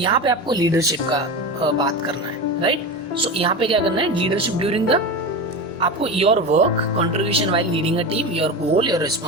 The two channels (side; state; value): both; normal; correlation 0.25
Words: पे आपको leadership का बात करना है, right? So यहाँ पे क्या करना है? Leadership during the, आपको your work, contribution while leading a team, your goal, your